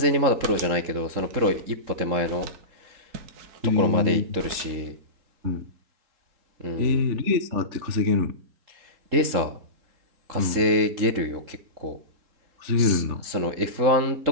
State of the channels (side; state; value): left; late; 3.7 ms